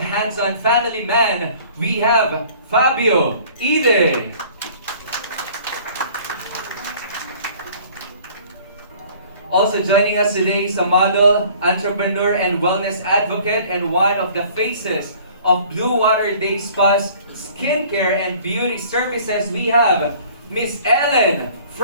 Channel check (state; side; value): inverted; both; correlation -0.51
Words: family man. We have Fabio Ide. Also joining us today is a model, entrepreneur, and wellness advocate, and one of the faces of Blue Water Day Spa's skincare and beauty services. We have Miss Ellen